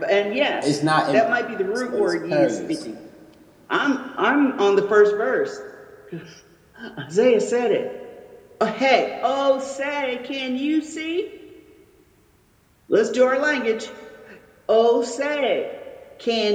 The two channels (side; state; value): both; identical; correlation 1.00